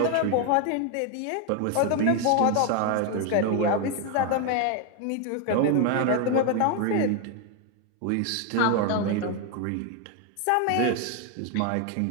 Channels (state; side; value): different; both; correlation 0.01